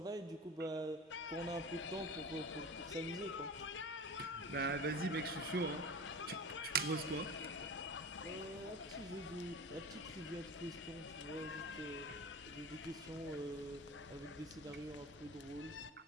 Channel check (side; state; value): both; normal; correlation 0.33